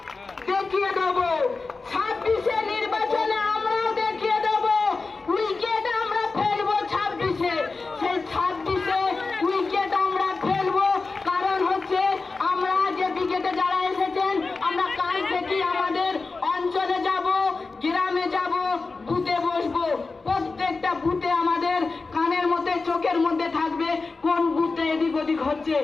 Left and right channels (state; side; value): quieter; right; 4.0 dB